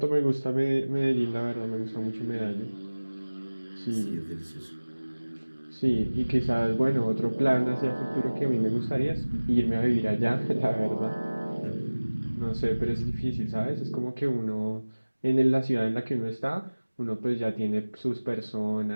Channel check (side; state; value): both; inverted; correlation -1.00